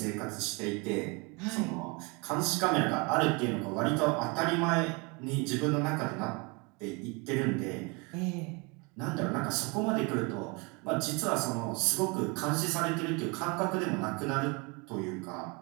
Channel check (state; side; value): quieter; left; 29.6 dB